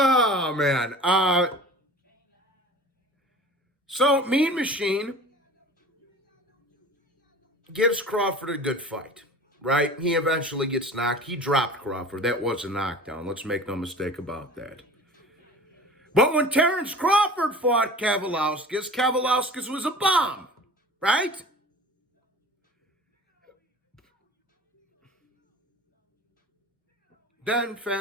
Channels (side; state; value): both; normal; correlation 0.40